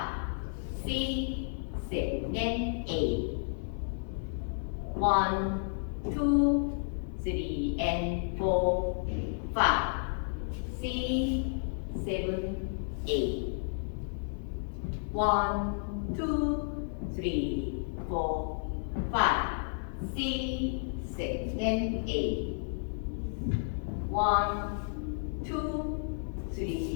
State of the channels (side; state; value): right; silent; 56 dB below the other